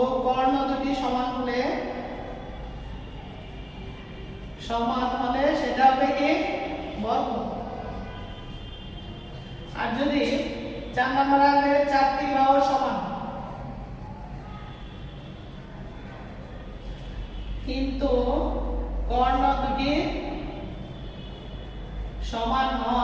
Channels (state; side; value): identical; both; correlation 1.00